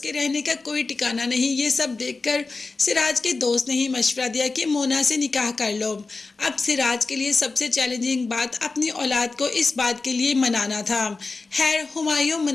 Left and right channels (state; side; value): quieter; right; 3.8 dB